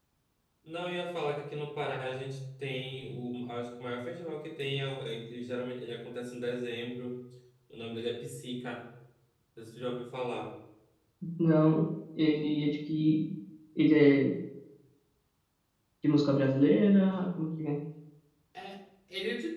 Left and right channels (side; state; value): both; identical; correlation 1.00